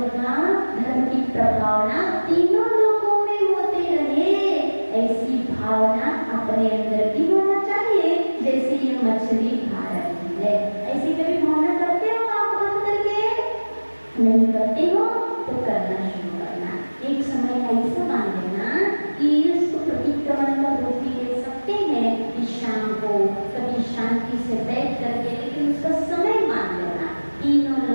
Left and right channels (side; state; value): both; inverted; correlation -1.00